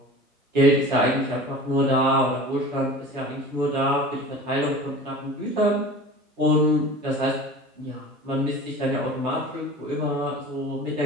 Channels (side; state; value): both; normal; correlation 0.39